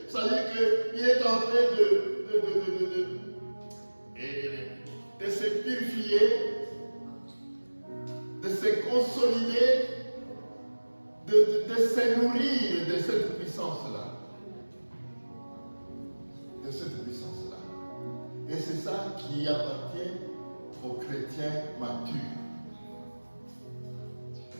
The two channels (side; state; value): both; inverted; correlation -1.00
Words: Ça veut dire qu'il est en train de se purifier, de se consolider, de se nourrir de cette puissance-là. de cette puissance-là. Et c'est ça qui appartient aux chrétiens matures.